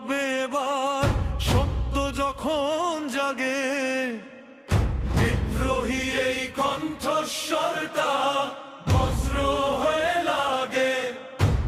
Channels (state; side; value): identical; both; correlation 1.00